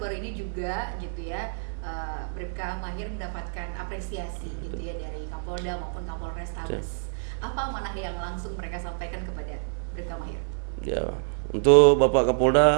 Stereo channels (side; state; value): left; silent; 58 dB below the other